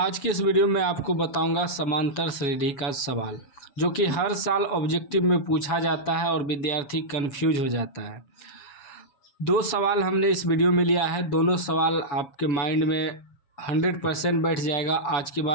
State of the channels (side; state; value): right; late; 7.1 ms